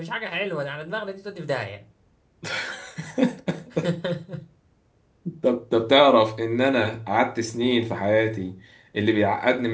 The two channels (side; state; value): both; identical; correlation 1.00